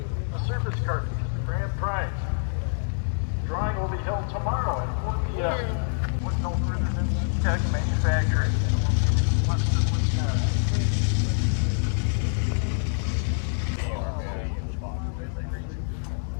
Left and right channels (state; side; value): silent; right; digital silence